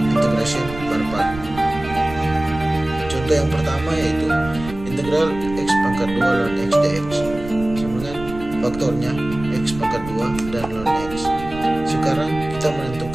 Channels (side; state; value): right; noise; rumble, 13 dB below the sound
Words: per part. Contoh yang pertama yaitu integral x pangkat 2 ln x dx sama dengan faktornya x pangkat 2 dan ln x. Sekarang kita